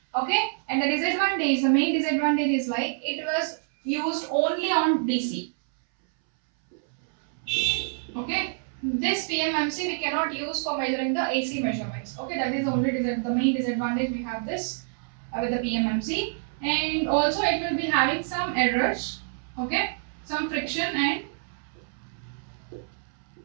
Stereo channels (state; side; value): silent; left; 60 dB below the other